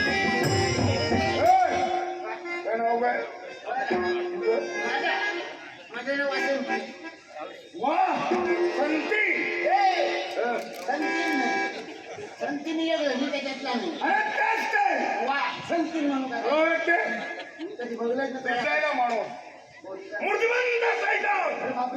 माझं नाव वासंती. संतीने मी त्याच्यातला नाही. वा संती म्हणून कधी बघलंच माणूस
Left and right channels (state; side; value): identical; both; correlation 1.00